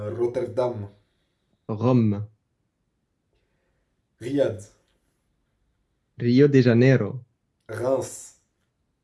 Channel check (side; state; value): both; identical; correlation 1.00